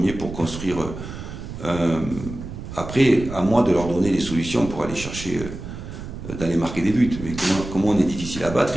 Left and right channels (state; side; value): noise; right; rumble, 10 dB below the sound